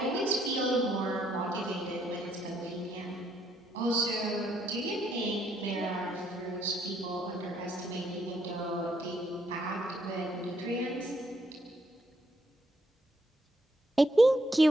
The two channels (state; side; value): normal; both; correlation 0.72